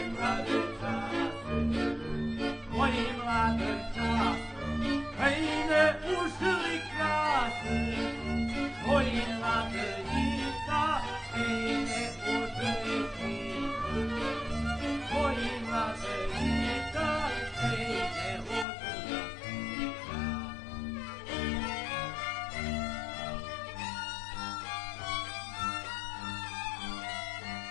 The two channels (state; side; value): drops out; right; at 18.7 s